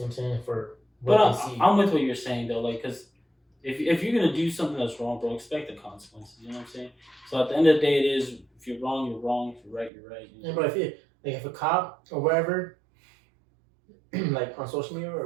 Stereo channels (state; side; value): drops out; left; at 9.9 s